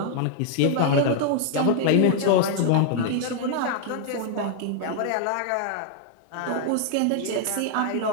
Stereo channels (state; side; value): different; both; correlation 0.00